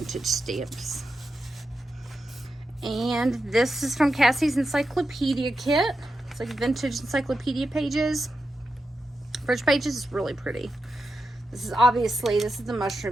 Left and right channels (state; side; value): normal; both; correlation 0.88